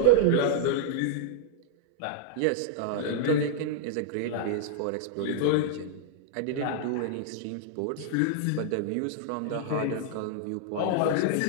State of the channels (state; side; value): different; both; correlation -0.01